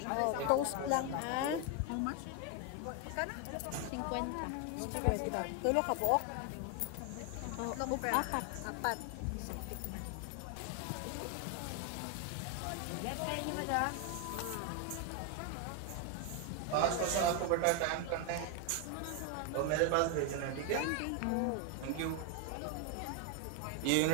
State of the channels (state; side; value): different; both; correlation 0.01